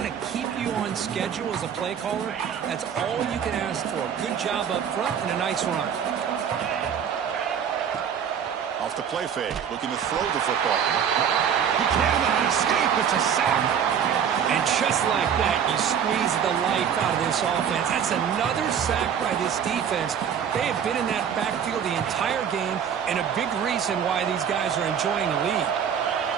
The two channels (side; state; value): left; quieter; 8.1 dB